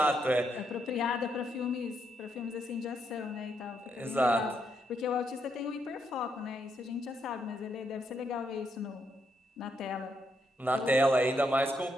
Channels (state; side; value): normal; both; correlation 0.78